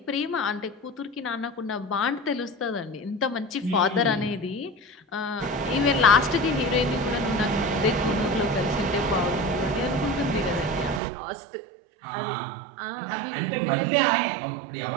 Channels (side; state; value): left; drops out; at 11.0 s